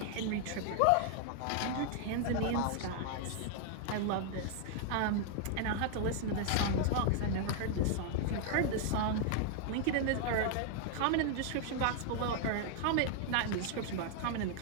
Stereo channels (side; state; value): both; different; correlation 0.00